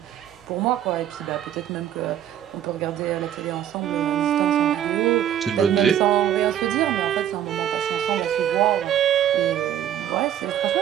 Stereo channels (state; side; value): quieter; left; 10.7 dB